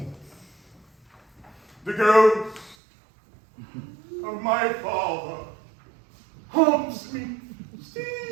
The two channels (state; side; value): drops out; left; at 2.8 s